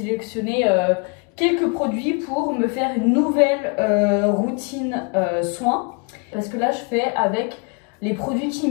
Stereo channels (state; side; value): quieter; right; 33.9 dB